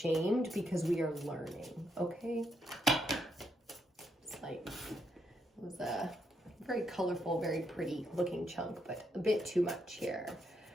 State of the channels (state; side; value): normal; both; correlation 0.78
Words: because we are learning. Okay. It's like, it was a very colorful, very pretty looking chunk, but a bit too much here.